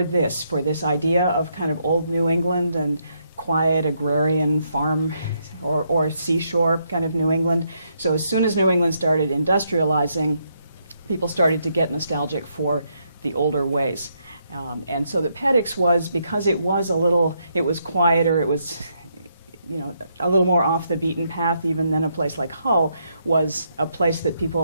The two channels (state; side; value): inverted; both; correlation -0.76